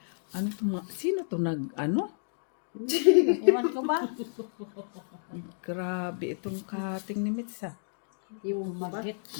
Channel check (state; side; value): silent; right; digital silence